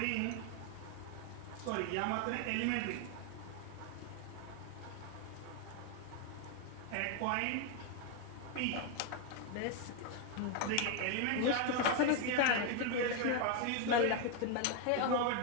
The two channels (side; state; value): both; different; correlation 0.01